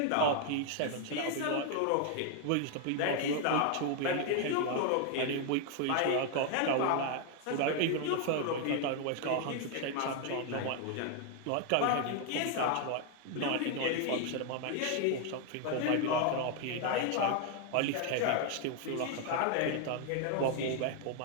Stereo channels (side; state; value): both; different; correlation 0.00